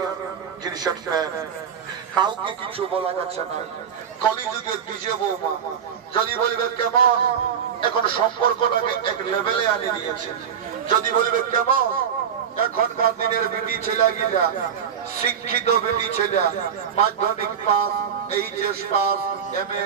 জিনিসের প্যান্ট, কাউকে কিছু বলা যাচ্ছে না। কলিযুগের নিজে বৌমা যদি বলবে কেমন, এখন সম্পর্কটাকে এক লেভেলে আনি দিয়েছে। যদি বলবে কেমন, এখনকার দিনের বেটি ছেলে গিলা, শিক্ষিত বেটি ছেলে, মাধ্যমিক পাস, এইচএস পাস, এমএ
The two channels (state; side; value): quieter; left; 7.8 dB